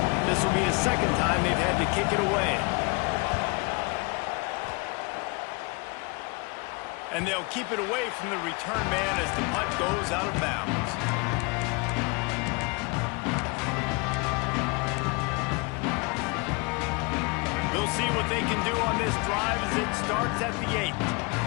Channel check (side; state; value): right; quieter; 29.5 dB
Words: This will be the second time they've had to kick it away. And they'll keep it away from the return man as the punt goes out of bounds. We'll see what they can do on this drive as it starts at the 8.